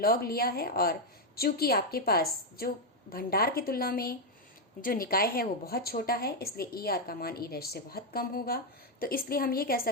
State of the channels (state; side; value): normal; both; correlation 0.02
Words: लिया है, और चूंकि आपके पास जो भंडार की तुलना में जो निकाय है वो बहुत छोटा है इसलिए ई आर का मान ई डैश से बहुत कम होगा। तो इसलिए हम ये कह